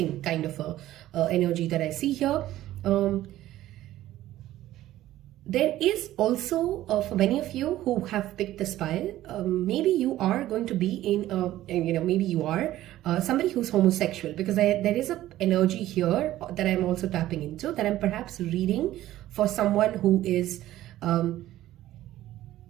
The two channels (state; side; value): quieter; left; 14.4 dB